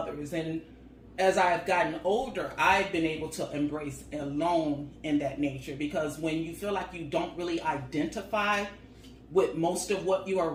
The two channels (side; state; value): both; identical; correlation 1.00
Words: And as I've gotten older, I've been able to embrace alone in that nature, because when you feel like you don't really identify with most of what you're